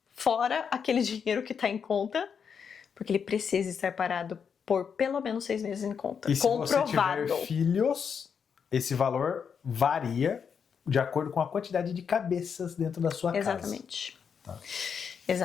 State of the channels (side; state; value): right; quieter; 6.8 dB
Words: fora aquele dinheiro que está em conta, porque ele precisa estar parado por pelo menos 6 meses em conta. E se você tiver filhos, esse valor varia de acordo com a quantidade de cabeças dentro da sua casa. Exatamente. Tá.